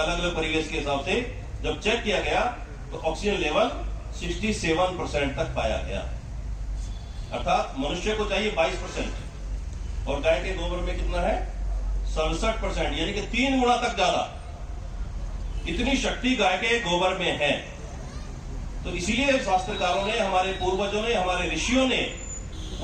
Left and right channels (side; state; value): both; identical; correlation 1.00